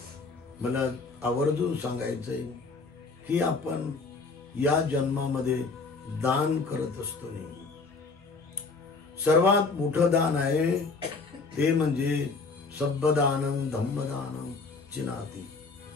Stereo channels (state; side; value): quieter; right; 4.2 dB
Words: मला आवर्जून सांगायचंय की आपण या जन्मामध्ये दान करत असतो नेहमी. सर्वात मोठं दान आहे ते म्हणजे सब्बदानं धम्मदानं चिनाती.